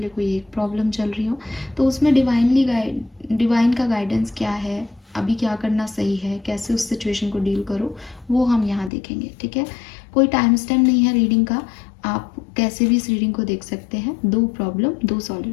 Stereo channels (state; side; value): drops out; right; at 8.9 s